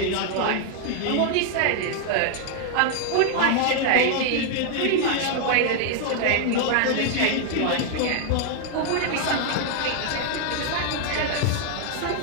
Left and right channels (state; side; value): different; both; correlation 0.00